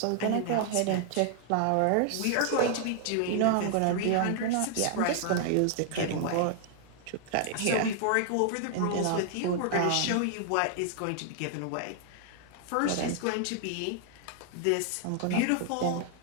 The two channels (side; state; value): both; different; correlation 0.00